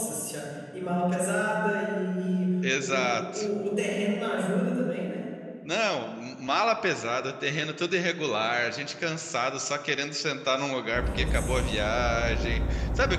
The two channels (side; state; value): both; identical; correlation 1.00